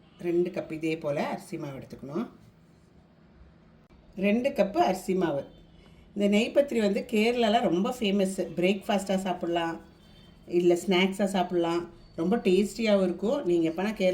2 கப்பு இதே போல் அரிசி மாவு எடுத்துக்கணும். 2 கப்பு அரிசி மாவு. இந்த நெய் பத்திரி வந்து கேரளாவில் ரொம்ப ஃபேமஸ்ஸு. பிரேக்ஃபாஸ்ட்டாக சாப்பிட்லாம், இல்லை ஸ்நாக்ஸாக சாப்பிட்லாம். ரொம்ப டேஸ்டியாகவும் இருக்கும். நீங்கள் எப்போனா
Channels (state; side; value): identical; both; correlation 1.00